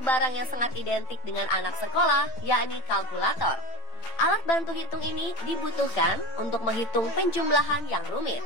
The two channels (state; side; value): late; right; 9.1 ms